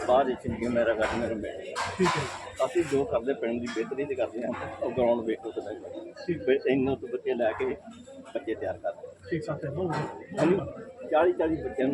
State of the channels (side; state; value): both; identical; correlation 1.00